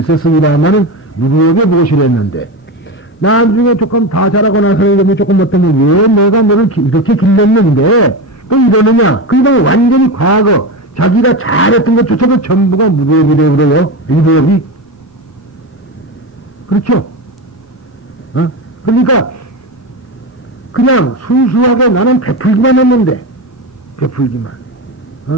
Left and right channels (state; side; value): normal; both; correlation 0.20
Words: 있었습니다만은 무리업에 보시를 했는데 나중에 조금 다 자라고 나서는 조금 어떠면 왜 내가 너를 이렇게 길렀는데 또 이러느냐. 그러니까 완전히 과거 자기가 잘했던 것조차도 전부가 무리업이래요. 그래요. 무리업이. 그렇죠? 그러니까 그냥 순수하게 나는 베풀기만 했는데 베풀기만.